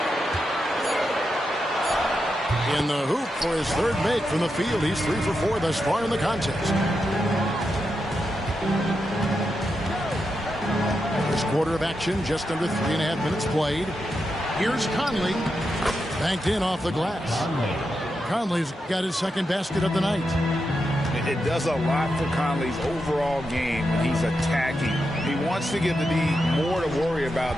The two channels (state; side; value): normal; both; correlation 0.86